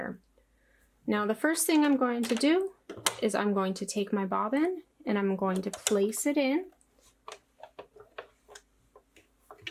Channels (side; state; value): both; identical; correlation 1.00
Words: Now the first thing I'm going to do is I'm going to take my bobbin and I'm going to place it in.